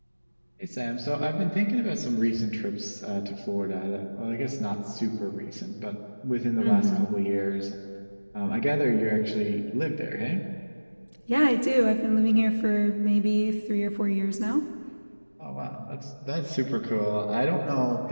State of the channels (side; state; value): both; inverted; correlation -1.00